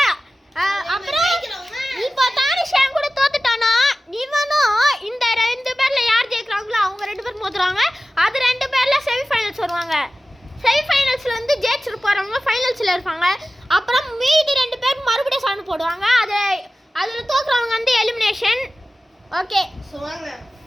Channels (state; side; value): normal; both; correlation 0.96